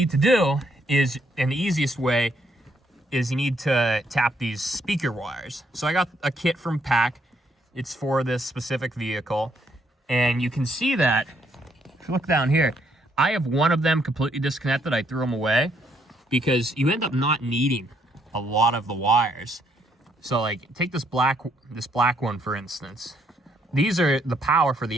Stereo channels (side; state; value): both; normal; correlation 0.71